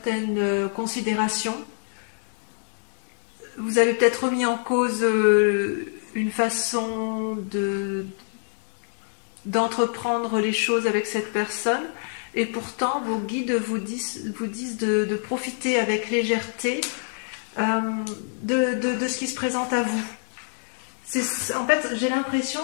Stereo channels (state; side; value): silent; right; 61 dB below the other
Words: considérations. Vous avez peut-être remis en cause une façon d'entreprendre les choses avec cette personne. Et pourtant, vos guides vous disent de profiter avec légèreté de ce qui se présente à vous. En fait, j'ai l'impression